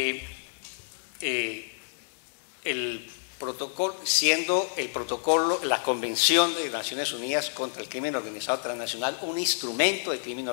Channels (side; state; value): right; silent; digital silence